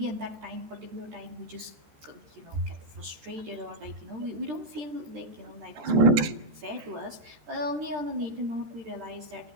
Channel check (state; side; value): late; left; 13 ms